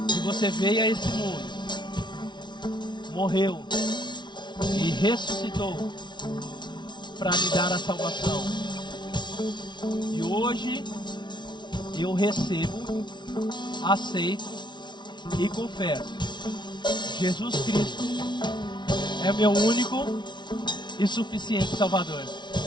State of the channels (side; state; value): right; late; 0.22 ms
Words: que você veio a esse mundo, morreu e ressuscitou para me dar a salvação. E hoje eu recebo, aceito e confesso: Jesus Cristo é meu único e suficiente Salvador.